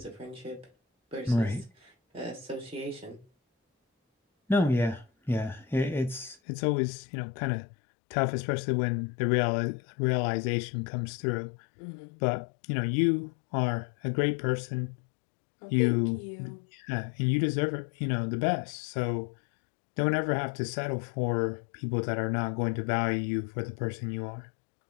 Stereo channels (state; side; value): drops out; right; at 6.4 s